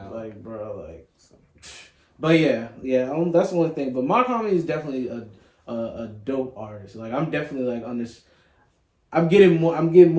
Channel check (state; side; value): identical; both; correlation 1.00